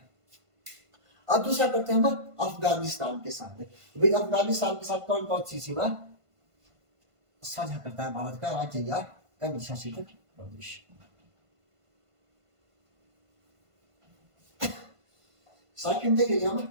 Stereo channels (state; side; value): late; left; 1.5 ms